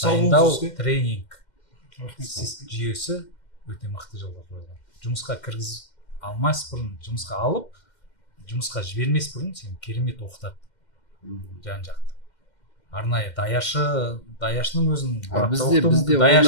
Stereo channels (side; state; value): right; late; 2.1 ms